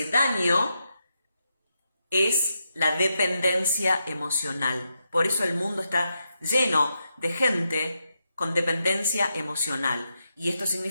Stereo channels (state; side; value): inverted; both; correlation -0.84